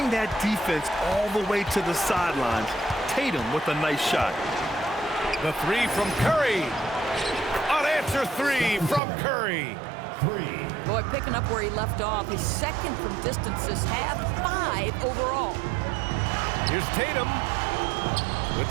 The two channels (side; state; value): left; drops out; at 9.0 s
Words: that defense all the way to the sidelines. Tatum with a nice shot. The 3 from Curry. Unanswered 3 from Curry. Boy, picking up where he left off. His second from distance this half, 5 overall. Here's Tatum with